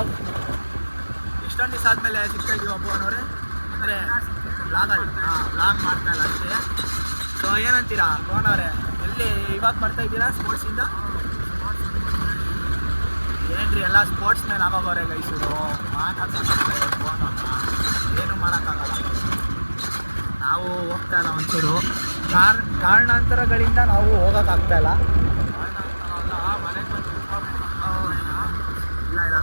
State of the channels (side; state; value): both; inverted; correlation -1.00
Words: ಇಷ್ಟೊಂದು ದಿವಸ ಆದಮೇಲೆ ಸಿಗ್ತಾ ಇದೀವಿ ಅಬ್ಬನವ್ರೆ. ಅಂದರೆ ಬ್ಲಾಗ್ ಮಾಡ್ತಾ ಇಲ್ಲ ಅಷ್ಟೇ. ಸೊ ಏನಂತೀರಾ ಭುವನವ್ರೆ, ಎಲ್ಲಿ ಇವಾಗ ಬರ್ತಾ ಇದ್ದೀರಾ ಸ್ಪೋರ್ಟ್ಸಿಂದ? ಏನ್ರಿ ಎಲ್ಲ ಸ್ಪೋರ್ಟ್ಸ್ ಮೇಲೆ ಆಗೋಗೋರೆ ಗೈಸರು, ಮಾತಾಡ್ತಾರೆ ಭುವನವ್ರನ್ನ, ಏನೂ ಮಾಡೋಕ್ಕಾಗಲ್ಲ. ನಾವು ಹೋಗ್ತಾ ಇಲ್ಲ ಒಂಚೂರು ಕಾರಣಾಂತರಗಳಿಂದ ನಾವು ಹೋಗೋಕ್ಕಾಗ್ತಾ ಇಲ್ಲ. ಇಲ್ಲ